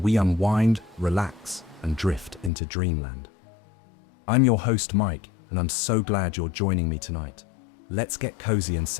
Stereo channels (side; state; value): right; drops out; at 2.5 s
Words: unwind, relax, and drift into dreamland. I'm your host, Mike, and I'm so glad you're joining me tonight. Let's get cozy and